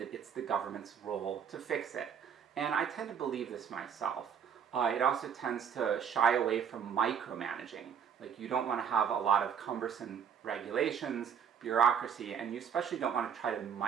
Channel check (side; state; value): left; quieter; 7.6 dB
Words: it's the government's role to fix it. And I tend to believe this myself. It also tends to shy away from micromanaging. Like, you don't want to have a lot of cumbersome regulations, bureaucracy, and you especially don't want to try to